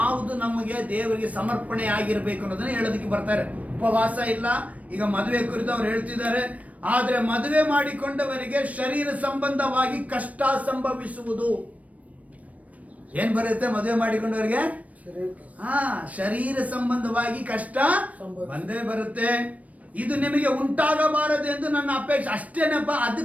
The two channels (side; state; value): left; late; 0.068 ms